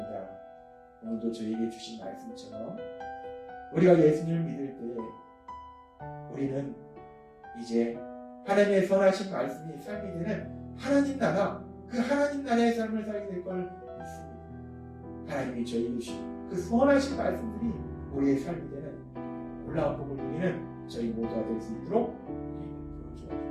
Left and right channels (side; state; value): both; identical; correlation 1.00